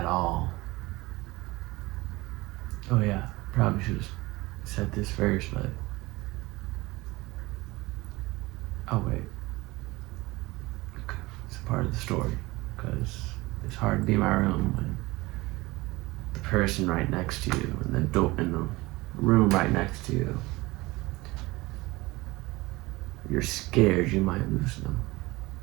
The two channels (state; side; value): quieter; left; 21.3 dB